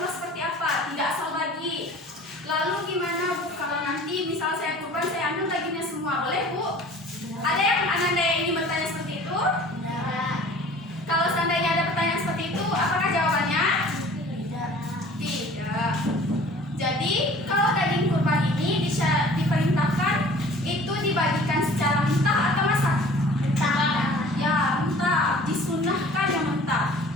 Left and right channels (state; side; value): normal; both; correlation 0.47